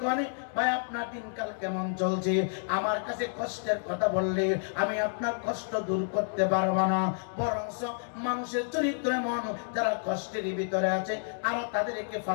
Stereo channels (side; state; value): right; silent; digital silence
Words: করে ভাই আপনার দিনকাল কেমন চলছে, আমার কাছে কষ্টের কথা বললে আমি আপনার কষ্ট দূর করতে পারবো না, বরঞ্চ মানুষের চরিত্র এমন যারা কষ্টের ভিতরে আছে আর তাদেরকে